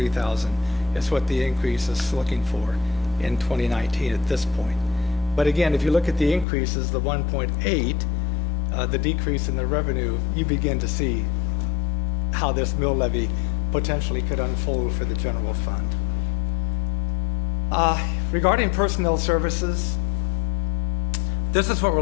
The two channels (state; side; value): drops out; right; at 6.5 s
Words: is what the increase is looking for in 2019 at this point. But again, if you look at the increases, the 1.8, the decrease in the revenue, you begin to see how this mill levy potentially could unfold for the general fund. Regarding personnel services, this is what we're